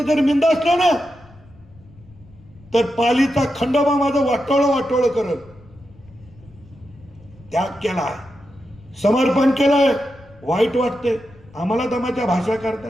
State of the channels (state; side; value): noise; left; rumble, 25 dB below the sound